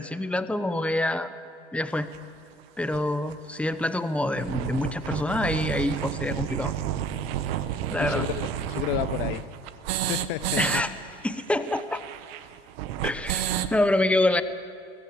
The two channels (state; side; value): normal; both; correlation 0.59